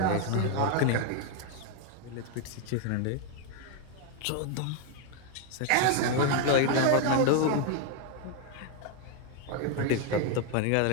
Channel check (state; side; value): different; both; correlation 0.01